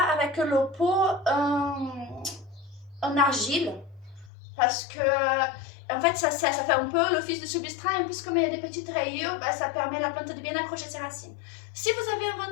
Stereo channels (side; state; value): right; drops out; at 4.3 s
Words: avec le pot en argile parce que en fait ça fait un peu l'office de substrat et en plus comme il y a des petites rayures, bah, ça permet à la plante de bien accrocher ses racines. Si vous avez un